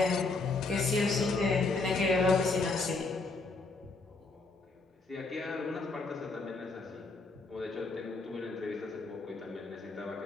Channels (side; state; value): right; quieter; 3.7 dB